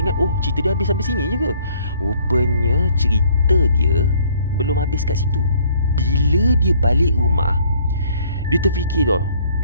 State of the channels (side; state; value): both; inverted; correlation -0.60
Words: ingat, oh cerita dia habis sampai sini je ke? Rupanya cerita dia belum habis kat situ. Bila dia balik rumah, dia terfikir tau.